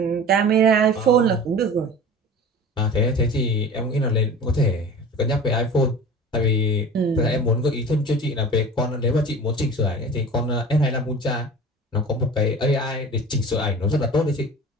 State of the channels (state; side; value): normal; both; correlation 0.38